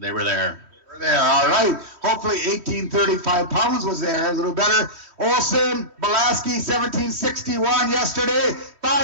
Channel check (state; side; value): late; left; 3.1 ms